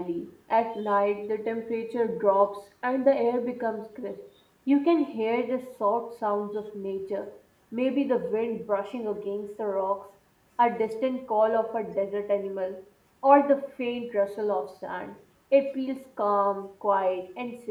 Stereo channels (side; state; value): both; identical; correlation 1.00